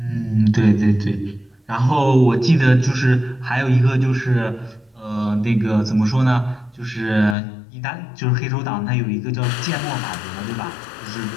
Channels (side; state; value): right; drops out; at 7.4 s